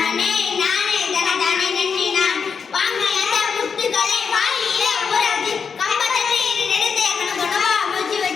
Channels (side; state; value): right; quieter; 6.1 dB